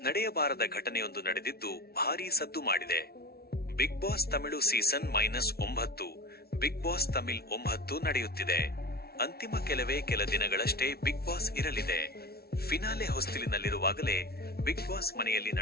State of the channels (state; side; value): late; right; 0.45 ms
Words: ನಡೆಯಬಾರದ ಘಟನೆಯೊಂದು ನಡೆದಿದ್ದು ಭಾರೀ ಸದ್ದು ಮಾಡಿದೆ. Bigg Boss Tamil season -9 Bigg Boss Tamil 9 ನಡೆಯುತ್ತಿದೆ. ಅಂತಿಮ ಕೆಲ ದಿನಗಳಷ್ಟೇ ಬಿಗ್ ಬಾಸ್ ಇರಲಿದೆ. ಫಿನಾಲೆ ಹೊಸ್ತಿಲಿನಲ್ಲಿರುವಾಗಲೇ ಬಿಗ್ ಬಾಸ್ ಮನೆಯಲ್ಲಿ